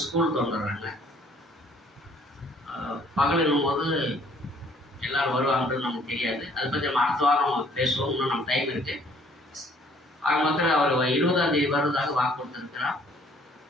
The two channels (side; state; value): both; normal; correlation 0.60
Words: ஸ்கூல் வந்துடுறாங்க. பகலும் போது எல்லோரும் வருவாங்கன்னு நமக்கு தெரியாது. அதை பற்றி நம்ம அடுத்த வாரம் பேசுவோம். இன்னும் நம்ம டைம் இருக்குது. ஆக மொத்தத்தில் அவர் 20ஆம் தேதி வருவதாக வாக்கு கொடுத்துருக்கிறார்.